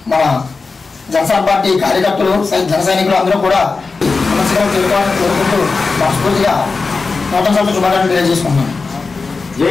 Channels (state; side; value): quieter; right; 4.2 dB